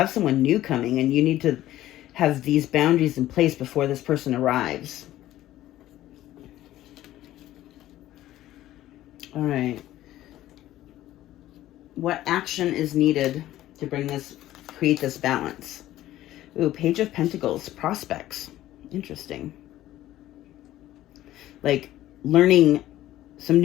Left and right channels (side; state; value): right; quieter; 14.3 dB